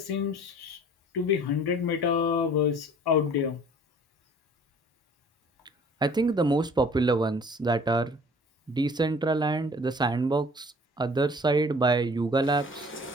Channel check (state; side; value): normal; both; correlation 0.51